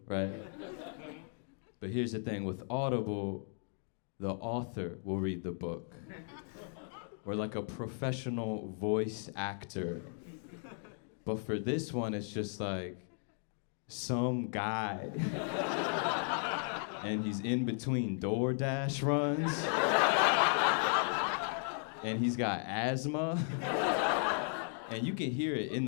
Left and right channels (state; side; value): silent; right; 54 dB below the other